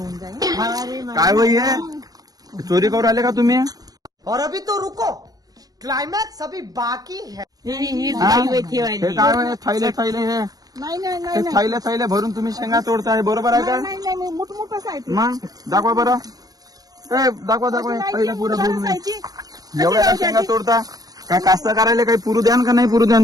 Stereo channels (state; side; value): late; left; 0.18 ms